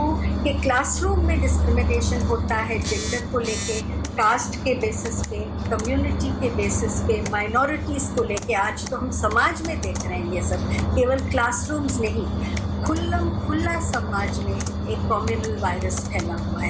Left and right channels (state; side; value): identical; both; correlation 1.00